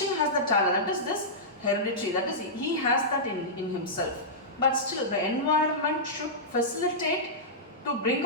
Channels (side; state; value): both; normal; correlation -0.14